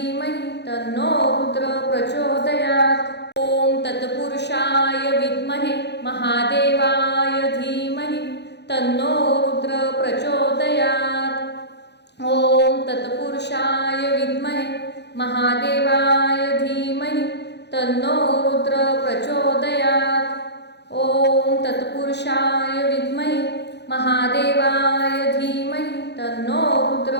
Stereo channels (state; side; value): late; right; 0.50 ms